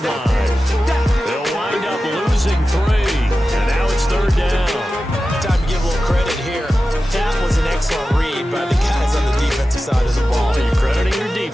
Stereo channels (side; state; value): both; normal; correlation 0.94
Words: line. They'll wind up losing 3. And now it's third down. Time to give a little credit here. That was an excellent read by the guys on the defensive side of the ball. Well, you're crediting your